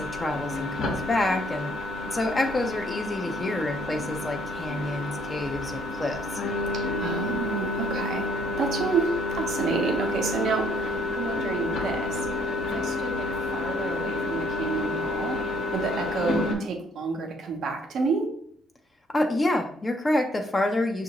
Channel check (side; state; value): both; normal; correlation 0.65